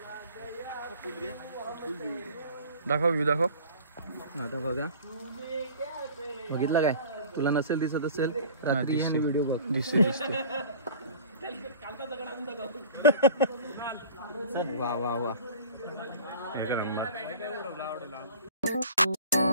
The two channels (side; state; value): both; inverted; correlation -0.43